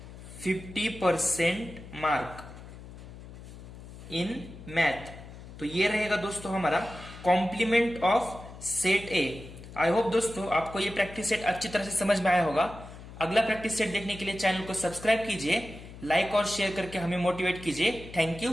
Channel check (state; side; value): noise; left; hum, 15 dB below the sound